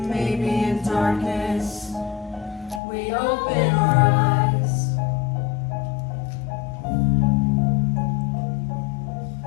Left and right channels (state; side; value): drops out; right; at 2.8 s